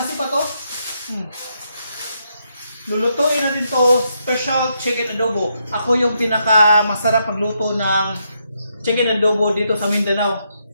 sipat to. Lulutuin natin to special chicken adobo. Ako yung pinaka masarap magluto ng chicken adobo dito sa Mindanao.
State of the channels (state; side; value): inverted; both; correlation -0.79